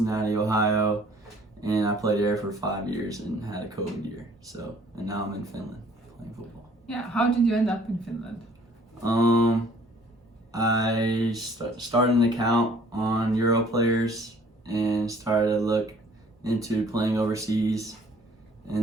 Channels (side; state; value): both; normal; correlation 0.57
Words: Ohio, and I played there for 5 years and had a COVID year. So, and now I'm in Finland playing football. Yeah, how did you end up in Finland? I started an account on Euro players and started to look into playing overseas.